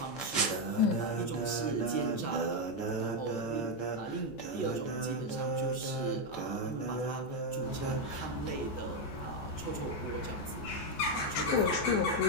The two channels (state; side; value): late; right; 14 ms